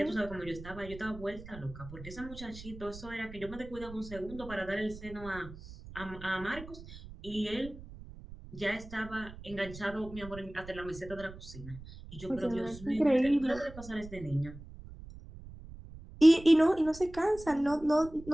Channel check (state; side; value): noise; right; rumble, 15 dB below the sound